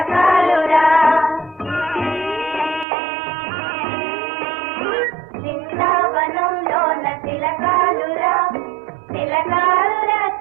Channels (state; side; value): drops out; left; at 2.9 s